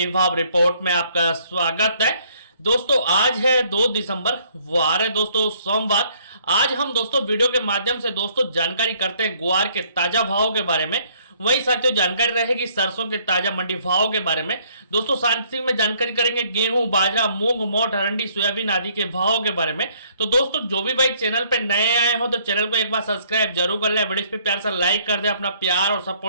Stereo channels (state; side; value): inverted; both; correlation -0.64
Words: भाव रिपोर्ट में आपका स्वागत है। दोस्तों आज है 2 दिसंबर, वार है दोस्तों सोमवार। आज हम दोस्तों वीडियो के माध्यम से दोस्तों जानकारी करते हैं ग्वार के ताजा भावों के बारे में। वही साथियों जानकारी रहेगी सरसों के ताजा मंडी भावों के बारे में। दोस्तों साथ में जानकारी करेंगे गेहूं, बाजरा, मूंग, मोठ, अरंडी, सोयाबीन आदि के भावों के बारे में। तो दोस्तों जो भी भाई चैनल पे नए आए हो तो चैनल को एक बार सब्सक्राइब जरूर कर ले, वीडियो पे प्यार से लाइक कर दे, अपना प्यार और